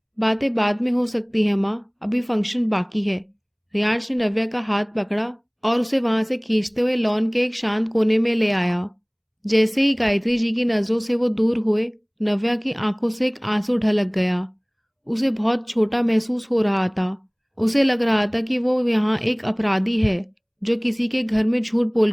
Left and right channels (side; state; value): both; identical; correlation 1.00